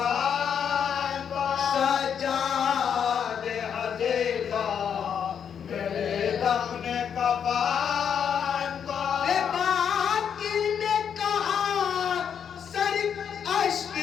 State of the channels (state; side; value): quieter; right; 7.8 dB